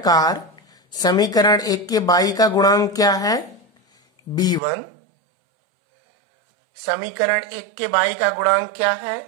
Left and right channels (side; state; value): left; drops out; at 4.6 s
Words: समीकरण 1 के y का गुणांक क्या है? B1। समीकरण 1 के y का गुणांक क्या है?